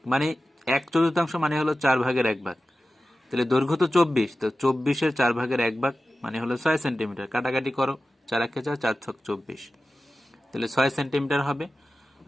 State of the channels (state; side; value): normal; both; correlation 0.95